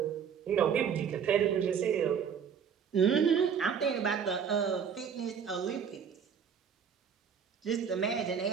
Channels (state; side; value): quieter; left; 7.2 dB